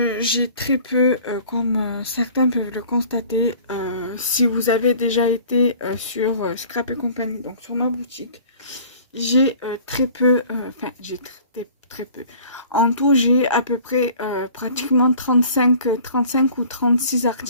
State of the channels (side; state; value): both; inverted; correlation -0.49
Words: j'ai très peu, comme certains peuvent le constater, si vous avez déjà été sur Scrap et compagnie, donc sur ma boutique. J'ai très peu, enfin j'ai très peu. En tout, j'ai à peu près pratiquement 35 ou 36